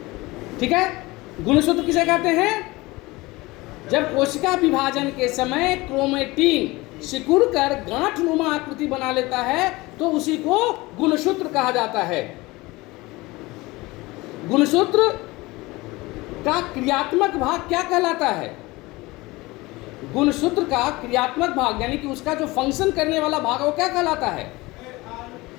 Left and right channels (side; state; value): right; quieter; 21.5 dB